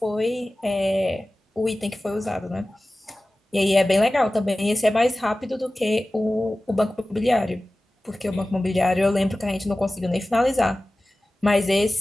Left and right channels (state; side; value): normal; both; correlation 0.97